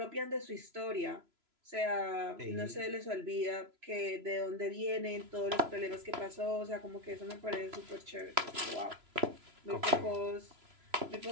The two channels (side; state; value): left; late; 3.0 ms